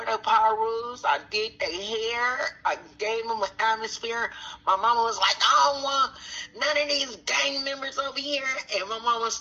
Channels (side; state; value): both; identical; correlation 1.00